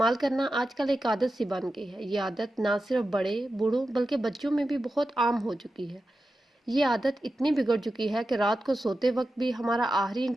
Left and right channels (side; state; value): both; normal; correlation 0.91